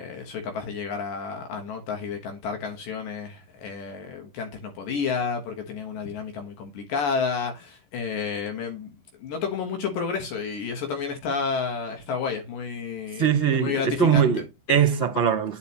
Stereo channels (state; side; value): late; right; 11 ms